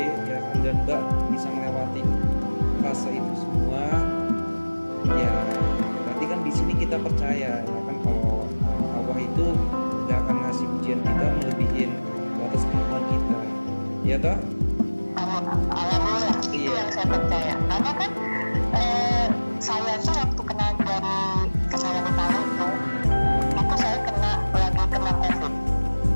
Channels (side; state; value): both; inverted; correlation -1.00